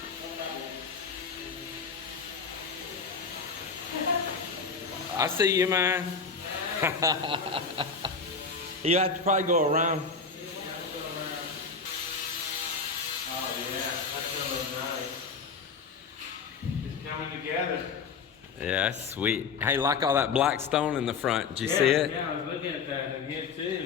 I see you, man. You have to probably go around. Oh yeah, that's really nice. It's coming together. Yeah, that's sweet. Hey, like all that black stone in the front. Did you see it? Yeah, I was looking at that in here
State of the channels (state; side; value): quieter; right; 5.1 dB